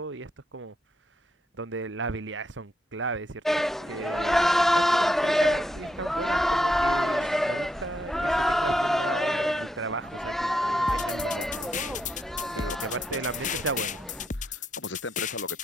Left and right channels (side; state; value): both; normal; correlation 0.80